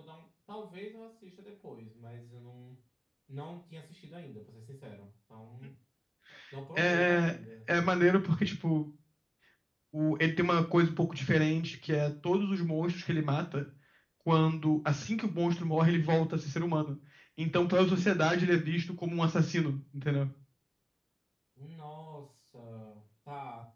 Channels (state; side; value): identical; both; correlation 1.00